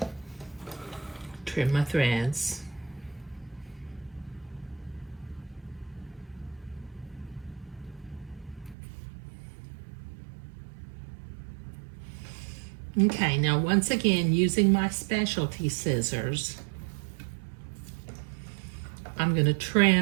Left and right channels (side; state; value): left; drops out; at 8.8 s